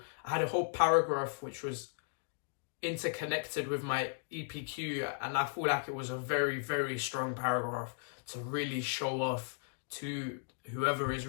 I had a whole paragraph which was interconnected with my EPQ, and I feel like it was a very, very strong paragraph to really show off to whoever is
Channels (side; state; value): right; silent; digital silence